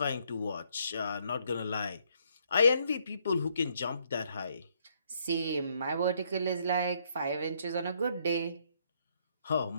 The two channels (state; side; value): inverted; both; correlation -0.70